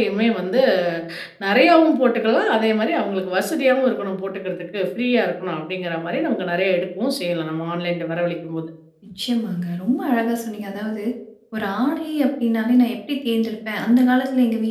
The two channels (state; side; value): identical; both; correlation 1.00